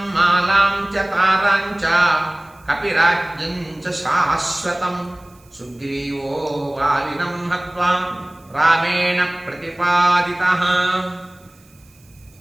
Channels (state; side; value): noise; right; hiss, 30 dB below the sound